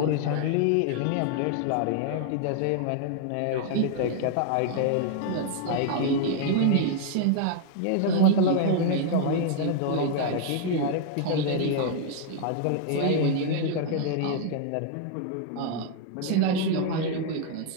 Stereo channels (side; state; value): both; different; correlation 0.00